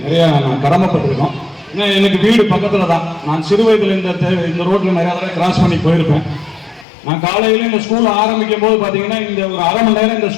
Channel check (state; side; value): drops out; right; at 6.9 s